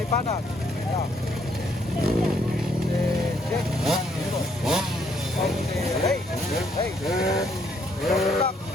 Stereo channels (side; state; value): both; normal; correlation 0.70